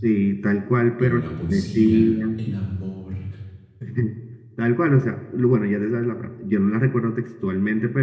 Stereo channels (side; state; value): both; identical; correlation 1.00